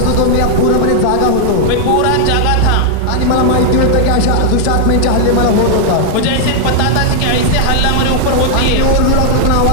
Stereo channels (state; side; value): different; both; correlation -0.01